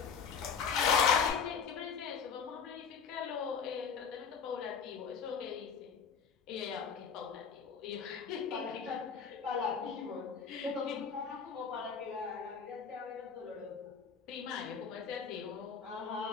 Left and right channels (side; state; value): right; quieter; 6.4 dB